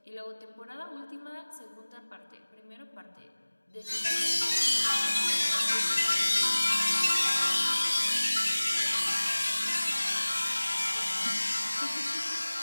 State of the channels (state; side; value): inverted; both; correlation -1.00